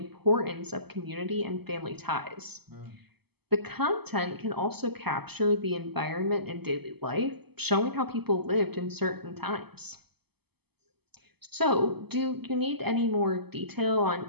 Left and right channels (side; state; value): left; late; 0.97 ms